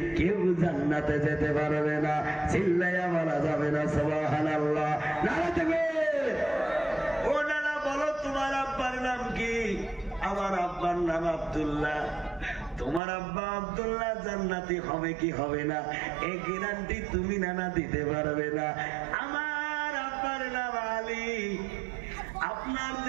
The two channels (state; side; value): drops out; left; at 13.0 s